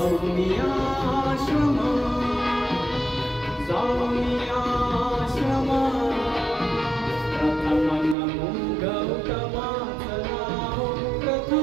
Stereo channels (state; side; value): drops out; left; at 8.2 s